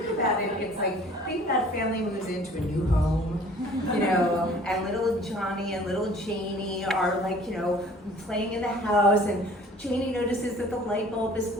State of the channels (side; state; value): both; normal; correlation 0.51